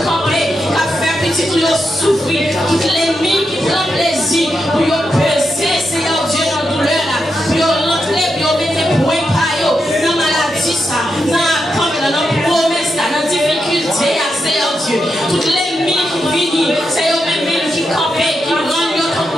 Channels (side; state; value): both; normal; correlation 0.85